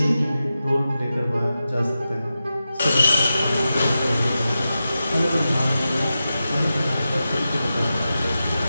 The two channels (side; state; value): both; inverted; correlation -0.92